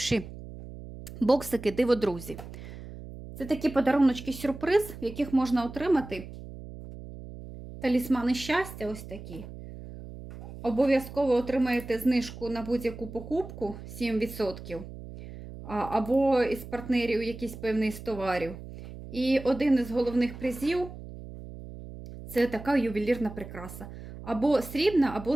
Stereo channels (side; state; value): right; noise; hum, 13 dB below the sound